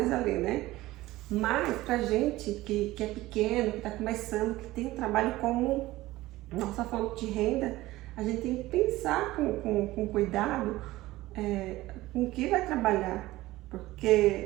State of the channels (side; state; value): left; quieter; 17.6 dB